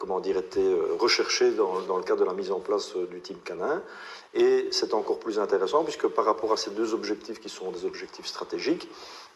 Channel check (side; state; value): both; identical; correlation 1.00